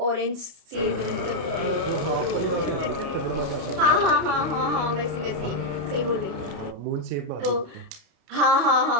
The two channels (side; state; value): left; late; 29 ms